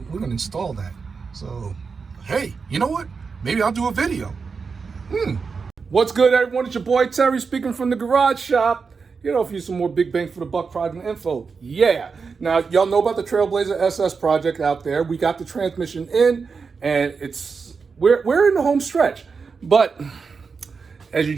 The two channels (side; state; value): left; quieter; 5.2 dB